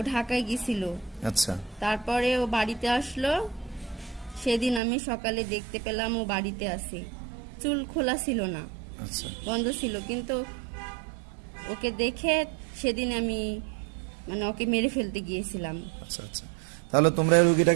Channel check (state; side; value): drops out; left; at 4.8 s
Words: ঢাকায় গেছিল, আচ্ছা তারপরে ও বাড়িতে আসলো। সেদিন আমি সকালে দেখতে পেলাম ও বাড়িতে আছে, চুল খোলা ছিল না, আচ্ছা বন্ধ ছিল। কিন্তু ওকে দেখে সেদিন আমি মানে ওকে মেরে ফেলতে গিয়েছিলাম, আচ্ছা আচ্ছা। তাহলে তোমরা এই